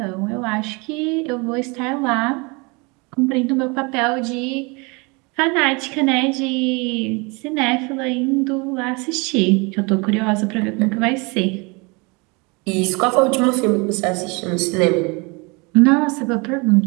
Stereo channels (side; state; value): left; quieter; 28.8 dB